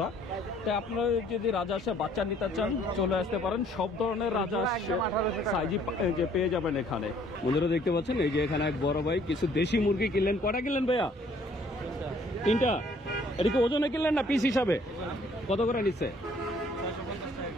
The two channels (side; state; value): both; normal; correlation 0.60